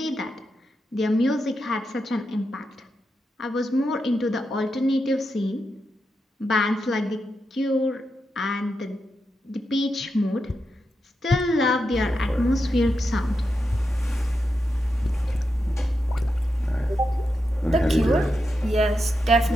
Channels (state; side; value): normal; both; correlation 0.87